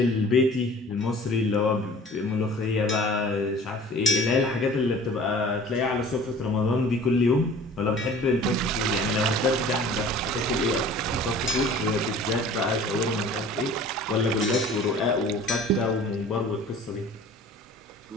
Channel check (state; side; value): normal; both; correlation 0.46